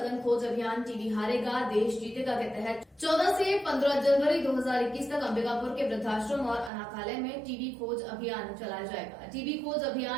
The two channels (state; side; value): drops out; left; at 6.7 s